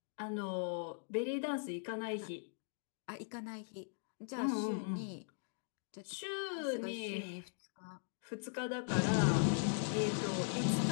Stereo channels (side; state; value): right; silent; digital silence